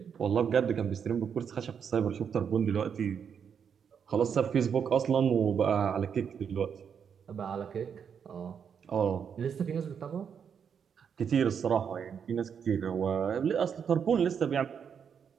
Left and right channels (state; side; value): quieter; left; 7.3 dB